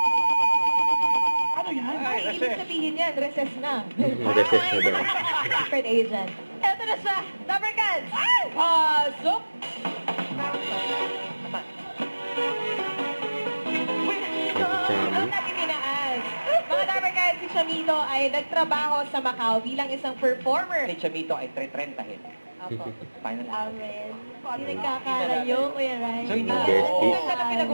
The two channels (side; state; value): both; inverted; correlation -1.00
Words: Ano yan? ay, ibig sabihin yan, recess na. Mag-assess na daw. Secret agent. Eto na siya, Lover Cats! Pasok! Chami. Natin tinaas. Mga Lover Cats, si Chamito ay nagtrabaho sa Macau bilang isang performer. Si Chamito ay 330. Apo. Final Amen. Hindi nagkakalayo, Kuya Rai. So, hindi Besties. Ito na